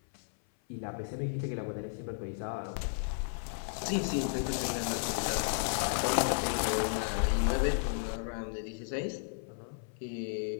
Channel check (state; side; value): silent; right; 55 dB below the other